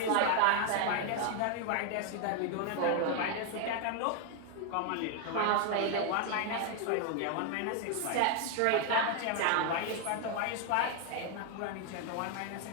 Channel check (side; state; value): both; different; correlation 0.00